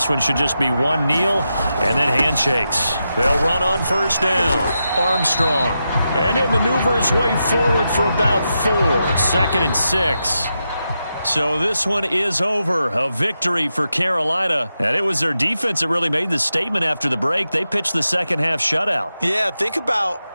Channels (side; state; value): both; inverted; correlation -0.87